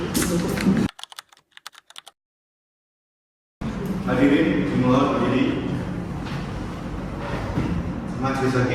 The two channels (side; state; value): both; identical; correlation 1.00